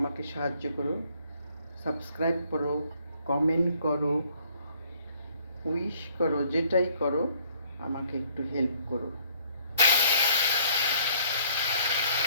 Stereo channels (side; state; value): both; inverted; correlation -0.61